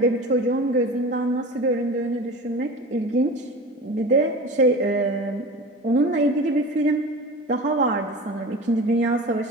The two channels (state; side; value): normal; both; correlation 0.34